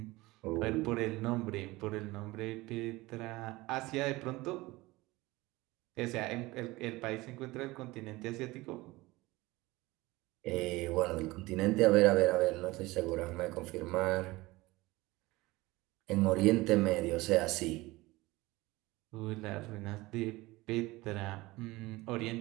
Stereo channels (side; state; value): left; quieter; 20.6 dB